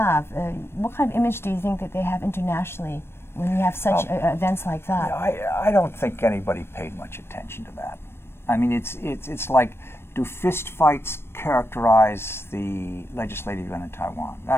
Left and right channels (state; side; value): late; right; 0.12 ms